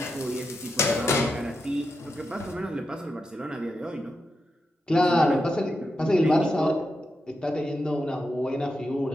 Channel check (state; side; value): normal; both; correlation 0.87